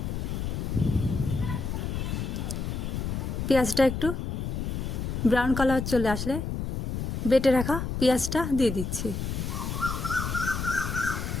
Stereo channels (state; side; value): noise; left; rumble, 3 dB below the sound